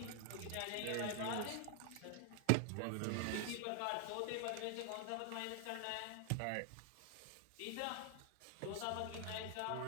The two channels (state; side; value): different; both; correlation 0.00